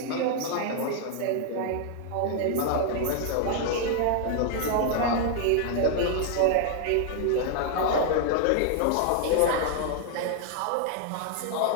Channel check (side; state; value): both; different; correlation 0.00